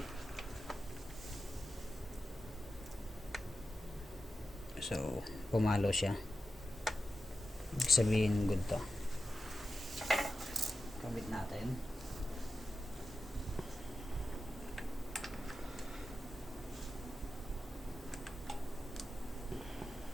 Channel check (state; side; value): normal; both; correlation 0.90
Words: So pumalo siya, ibig sabihin good to. Kabit natin.